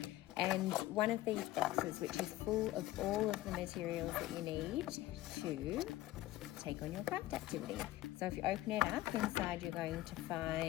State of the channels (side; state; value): right; quieter; 15.9 dB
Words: and one of these boxes which is full of all of the materials that you need to take on your craft activity. So if you open it up, inside you're going to